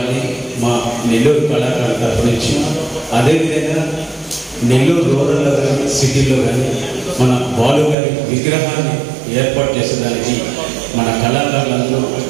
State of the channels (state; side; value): drops out; left; at 8.0 s